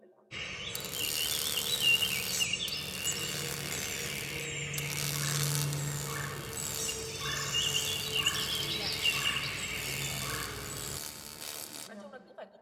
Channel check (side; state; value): both; identical; correlation 1.00